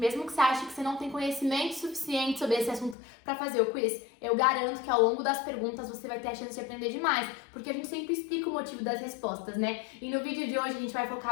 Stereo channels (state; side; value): drops out; right; at 3.0 s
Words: que você ache que você não tem conhecimento suficiente sobre esse assunto para fazer o quiz, eu garanto que ao longo das perguntas você vai ter a chance de aprender demais, porque a gente sempre explica o motivo das respostas, né? E no vídeo de hoje a gente vai